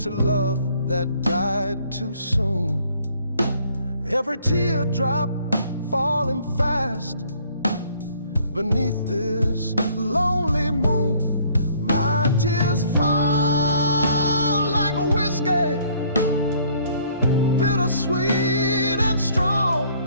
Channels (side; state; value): both; inverted; correlation -0.61